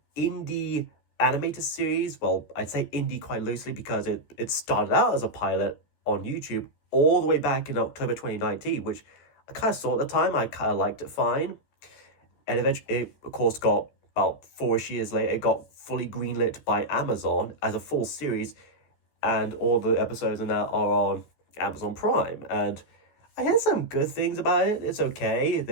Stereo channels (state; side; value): late; right; 14 ms